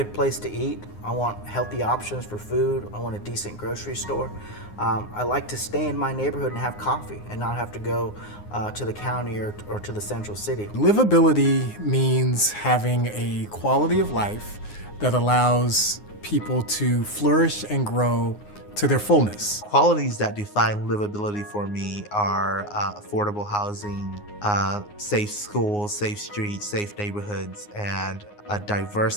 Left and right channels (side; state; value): right; late; 9.6 ms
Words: place to eat. I want healthy options for food. I want a decent grocery store. I like to stay in my neighborhood and have coffee and not have to go to the county or to the central city. Livability means having a quality of life that allows people to flourish and grow to their fullness. Qualities that define livability for me are affordable housing, safe schools, safe streets, safe neighborhoods, and a diverse